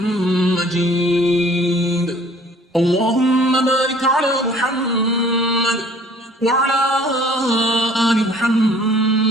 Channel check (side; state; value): both; normal; correlation 0.54